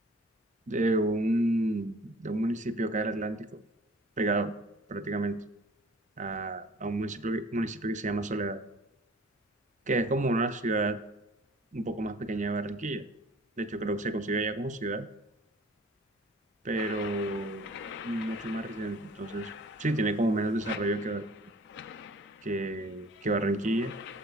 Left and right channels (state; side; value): normal; both; correlation 0.49